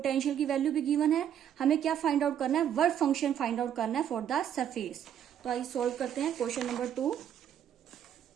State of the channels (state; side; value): quieter; left; 9.7 dB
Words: की value भी given है। हमें क्या find out करना है, वर्क फंक्शन फाइंड आउट करना है फॉर द सरफेस। तो आइए सॉल्व करते हैं क्वेश्चन नंबर 2।